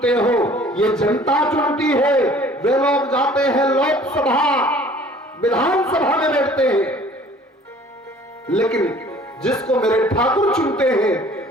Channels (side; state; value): both; normal; correlation 0.52